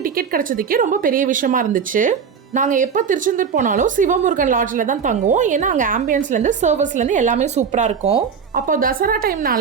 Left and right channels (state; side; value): quieter; left; 6.5 dB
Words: டிக்கெட் கிடச்சதுக்கே ரொம்ப பெரிய விஷயமா இருந்துச்சு. நாங்கள் எப்போ திருச்செந்தூர் போனாலும் சிவமுருகன் லாட்ஜில் தான் தங்குவோம். ஏன்னா அங்கே ஆம்பியன்ஸ்லேருந்து சர்வஸ்லேருந்து எல்லாமே சூப்பராக இருக்கும். அப்போ தசரா